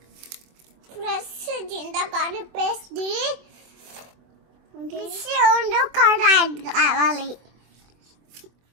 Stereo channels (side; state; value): left; late; 24 ms